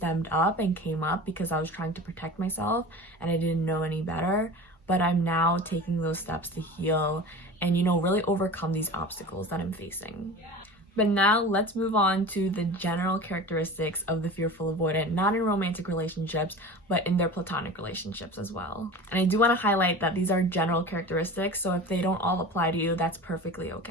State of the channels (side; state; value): both; normal; correlation 0.35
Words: up and came up because I was trying to protect myself and I didn't know any better, but I'm now taking those steps to heal and, really overcome these obstacles that I'm facing. But now let's move on to the general characteristics of the fearful avoidant, not in romantic relationships, but in their platonic relationships as well. And I do want to highlight that these are general characteristics, so if they don't all apply to you, that's perfectly